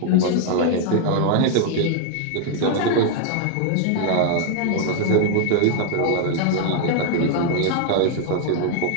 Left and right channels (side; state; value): both; different; correlation 0.00